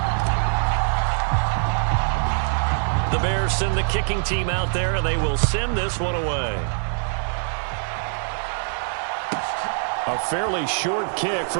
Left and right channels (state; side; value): silent; left; digital silence